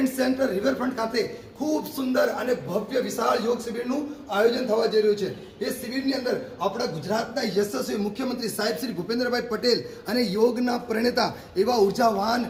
સેન્ટર રિવરફ્રન્ટ ખાતે ખૂબ સુંદર અને ભવ્ય વિશાળ યોગ શિબિરનું આયોજન થવા જઈ રહ્યું છે. એ શિબિરની અંદર આપણા ગુજરાતના યશસ્વી મુખ્યમંત્રી સાહેબ શ્રી ભૂપેન્દ્રભાઈ પટેલ અને યોગના પ્રણેતા એવા ઉર્જાવાન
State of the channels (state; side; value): identical; both; correlation 1.00